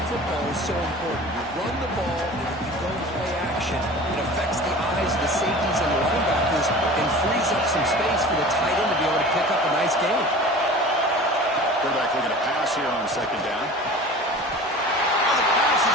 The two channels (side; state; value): both; normal; correlation 0.39